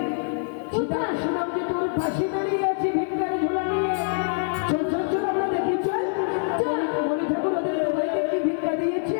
চিতা কোথায়? শুনলাম যে তোর পাশে দাঁড়িয়ে আছে ভিক্ষার ঝোলা নিয়ে। চল চল চল আমরা দেখি চল। চল। মনি ঠাকুর ওদের ভাইকে ভিক্ষা দিয়েছে।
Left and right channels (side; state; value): right; silent; digital silence